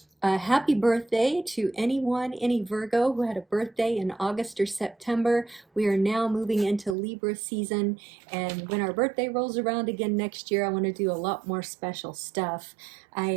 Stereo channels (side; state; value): left; drops out; at 7.0 s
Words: Happy birthday to any Virgo who had a birthday in August or September. We are now moving into Libra season, and when our birthday rolls around again next year, I want to do a lot more special stuff.